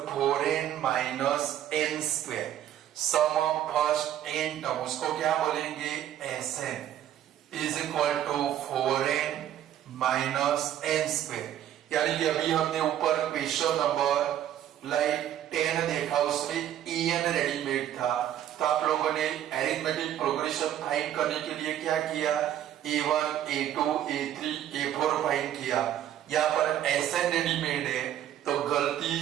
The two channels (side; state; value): left; quieter; 11.3 dB